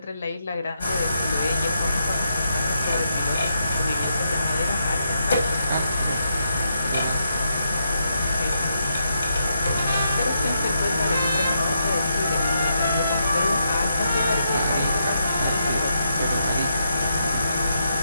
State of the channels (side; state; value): both; inverted; correlation -0.80